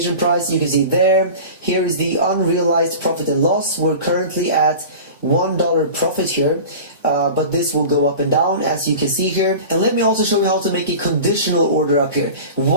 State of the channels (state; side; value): inverted; both; correlation -0.35